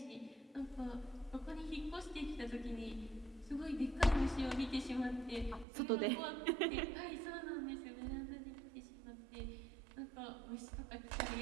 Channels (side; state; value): left; drops out; at 5.7 s